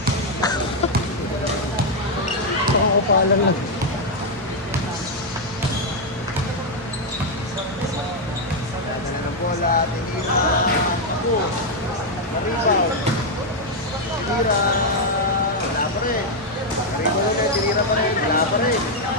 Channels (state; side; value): normal; both; correlation 0.01